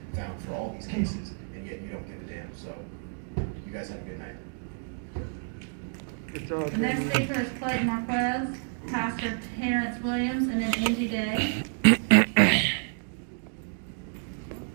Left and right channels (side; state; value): left; silent; 58 dB below the other